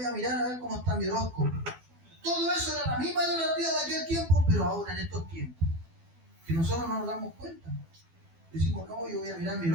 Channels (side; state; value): left; late; 12 ms